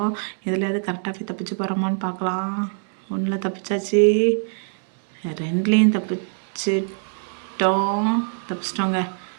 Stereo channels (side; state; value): left; silent; 63 dB below the other